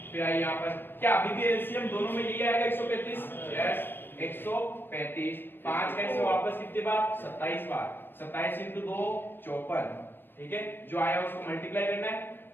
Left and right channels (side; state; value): right; late; 0.097 ms